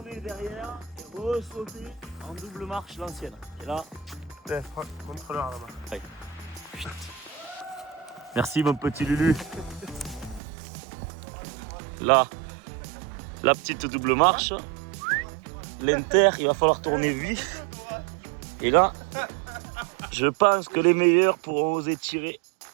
derrière et ressauter en double marche l'ancienne. Et là. Contrôleur là-bas. Ouais. Merci mon petit Lulu. Là, la petite double marche. L'inter, il va falloir tourner vif. Et là, je pense que les meilleurs pourront oser tirer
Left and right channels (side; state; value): left; drops out; at 10.4 s